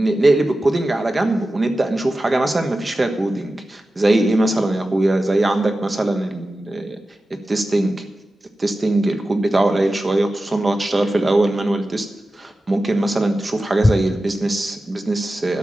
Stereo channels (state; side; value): normal; both; correlation 0.94